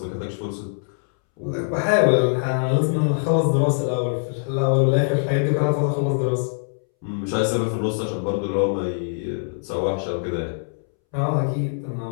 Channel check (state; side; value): silent; right; 63 dB below the other